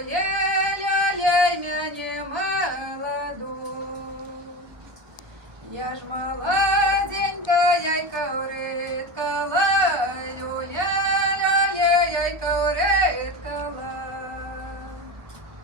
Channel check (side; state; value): left; late; 1.3 ms